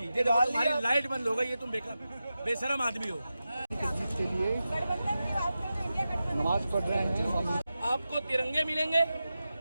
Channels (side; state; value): both; inverted; correlation -0.92